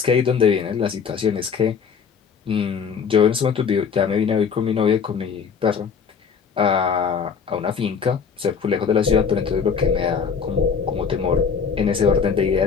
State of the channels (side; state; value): right; quieter; 6.3 dB